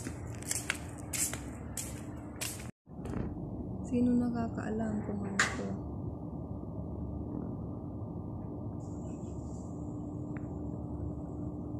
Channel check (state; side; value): identical; both; correlation 1.00